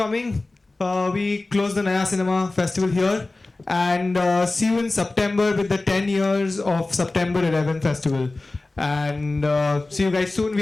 We close the Naya Cinema Festival here, and see you in September with the 10 years of September 11 Festival. And see you guys soon.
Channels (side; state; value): right; quieter; 3.1 dB